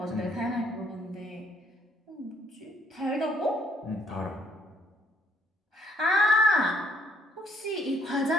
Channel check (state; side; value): normal; both; correlation 0.67